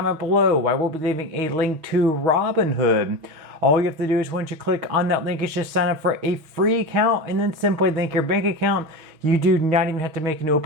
below, I will be leaving a link to Robinhood. All you have to do is once you click on that link is just sign up for a free account and then simply link your bank account. You do not even have to make an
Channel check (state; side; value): late; left; 6.3 ms